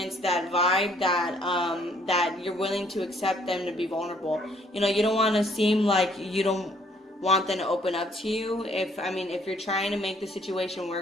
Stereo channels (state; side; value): normal; both; correlation 0.64